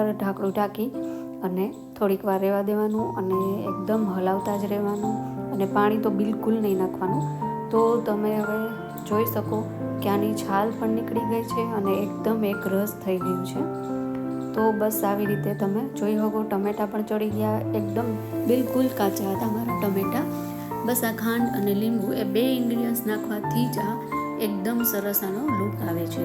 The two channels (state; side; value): identical; both; correlation 1.00